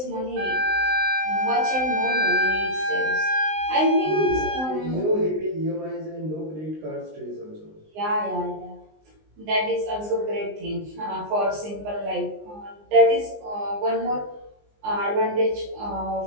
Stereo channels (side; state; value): left; late; 19 ms